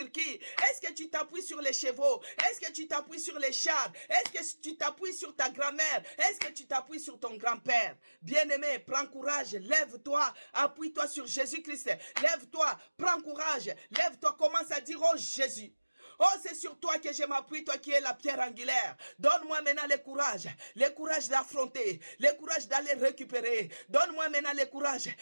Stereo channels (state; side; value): inverted; both; correlation -1.00